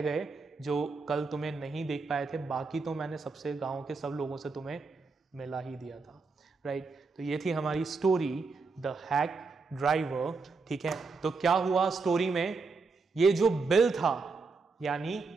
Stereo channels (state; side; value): quieter; left; 4.3 dB